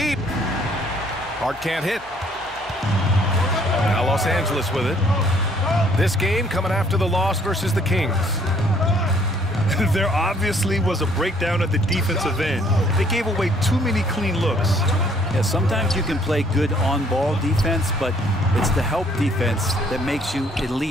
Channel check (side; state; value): both; normal; correlation 0.63